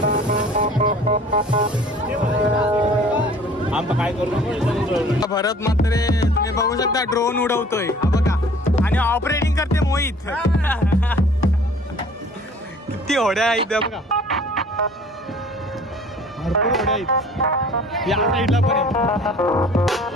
आम्ही काय करतो. भरत मात्र तुम्ही बघू शकता ड्रोन उडवतोय हा बघा आणि ऑपरेटिंग करते मोहित. किती होड्या आहेत बघा, भरपूर होड्या आहेत या साईडला पण आहे.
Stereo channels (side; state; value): both; normal; correlation 0.50